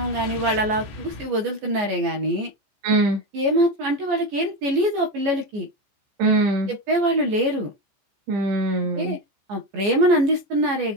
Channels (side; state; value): left; late; 14 ms